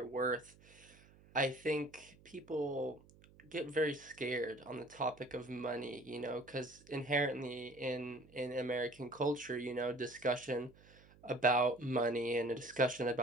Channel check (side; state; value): right; noise; hum, 25 dB below the sound